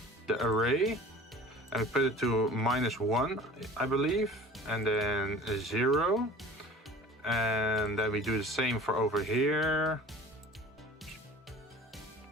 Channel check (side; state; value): both; normal; correlation 0.43